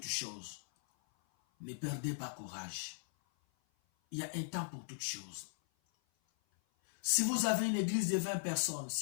choses. Ne perdez pas courage. Il y a un temps pour toutes choses. Si vous avez une église de 20 personnes,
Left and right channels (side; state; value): right; silent; 52 dB below the other